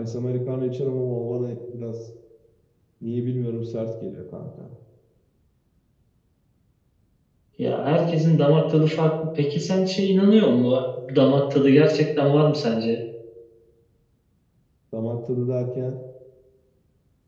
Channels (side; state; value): both; identical; correlation 1.00